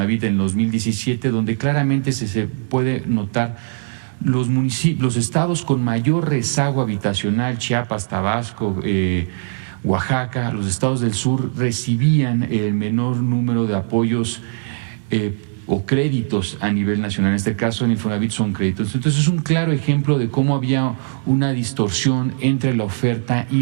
en 2017, donde claramente se puede notar los municipios, los estados con mayor rezago habitacional, Chiapas, Tabasco, Oaxaca, los estados del sur recibían el menor número de apoyos o créditos a nivel nacional. En este caso, en Infonavit son créditos. Entonces, es un claro ejemplo de cómo había una distorsión entre la oferta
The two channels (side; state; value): left; silent; 66 dB below the other